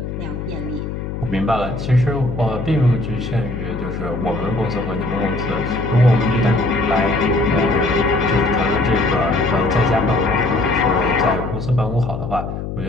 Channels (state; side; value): noise; left; hum, 6 dB below the sound